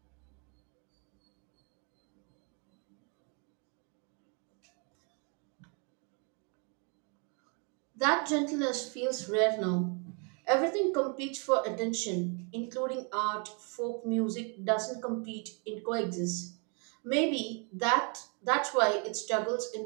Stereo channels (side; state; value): left; quieter; 36.8 dB